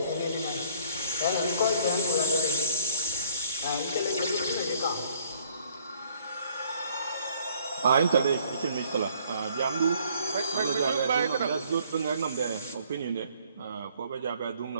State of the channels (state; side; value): inverted; both; correlation -0.61